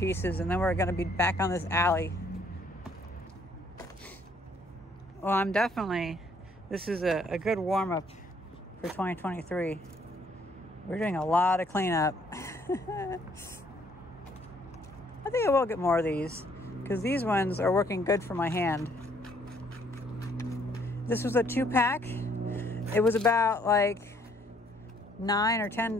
and then we're gonna be back on this alley. Well, this is a good warm-up for 2023. We're doing a lot of cleanup. I think I will get more of these, because these ones are working good for my hand. This was a 2-pack. It was about like $9 or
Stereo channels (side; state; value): both; normal; correlation 0.65